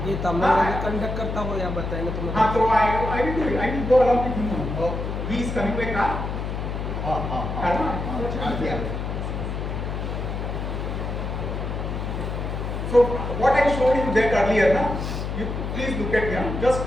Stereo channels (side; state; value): left; noise; hum, 4 dB below the sound